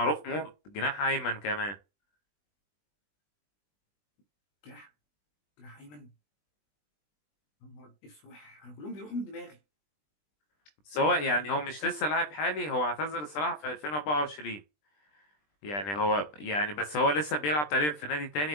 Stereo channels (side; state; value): right; late; 20 ms